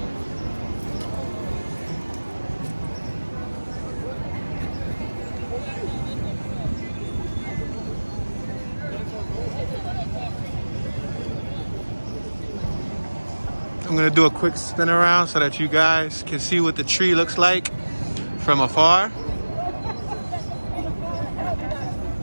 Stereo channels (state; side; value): inverted; both; correlation -1.00